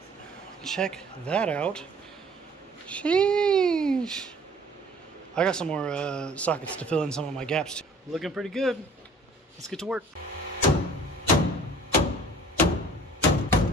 Check that out. Sheesh. I got some more sockets to fill in some of my gaps too. Looking pretty good. Let's get to work.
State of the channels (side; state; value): both; normal; correlation 0.51